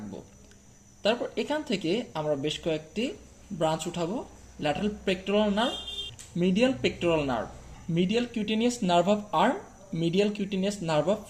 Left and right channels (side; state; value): both; identical; correlation 1.00